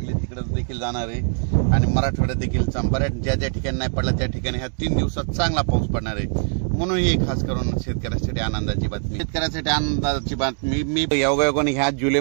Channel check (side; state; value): left; silent; 63 dB below the other